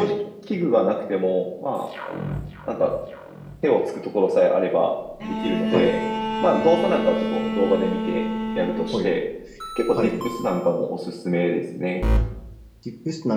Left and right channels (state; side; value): identical; both; correlation 1.00